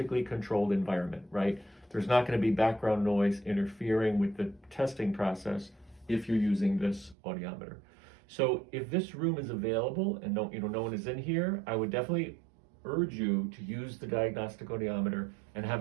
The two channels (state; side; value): drops out; left; at 7.2 s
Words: controlled environment, right? There's not going to be background noise interfering with the testing process if you're using this audiometer. So if this room is available and no one is in here, I would definitely urge you to use the diagnostic audiometer and